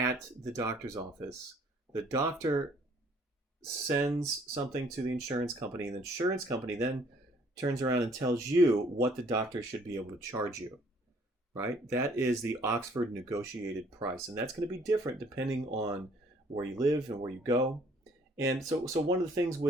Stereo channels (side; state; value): both; normal; correlation 0.60